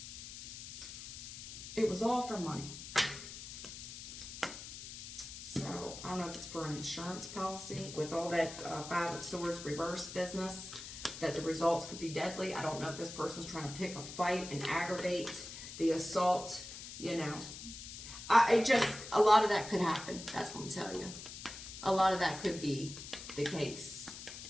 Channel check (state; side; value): noise; left; hiss, 11 dB below the sound